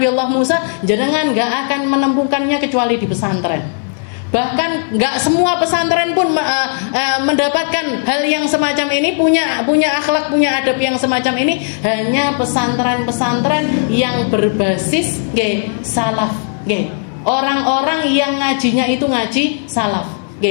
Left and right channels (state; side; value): silent; right; 67 dB below the other